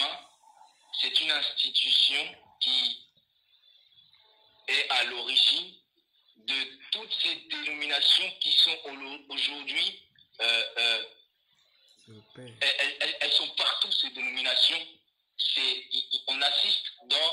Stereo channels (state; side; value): identical; both; correlation 1.00